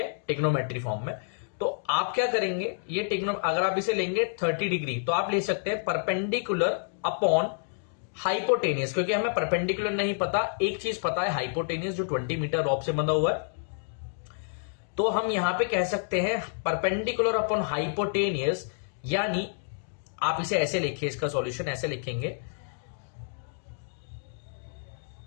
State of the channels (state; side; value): silent; right; digital silence